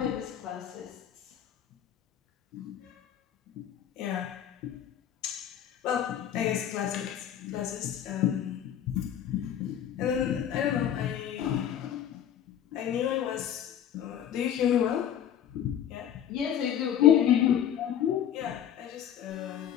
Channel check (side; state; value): right; quieter; 10.0 dB